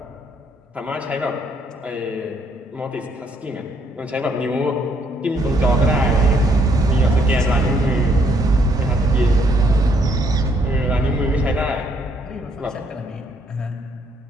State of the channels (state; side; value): normal; both; correlation 0.69